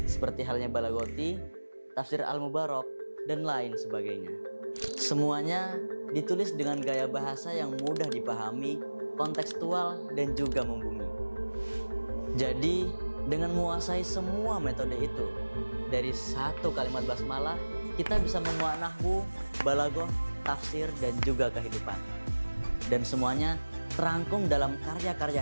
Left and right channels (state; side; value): inverted; both; correlation -1.00